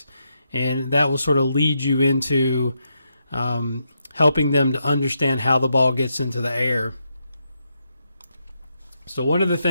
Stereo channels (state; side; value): inverted; both; correlation -0.82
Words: And that will sort of lead you into helping them to understand how the ball gets into the air. So one of the